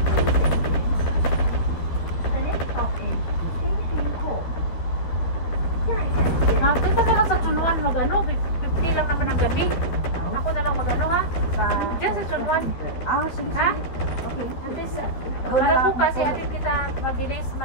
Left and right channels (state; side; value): late; right; 13 ms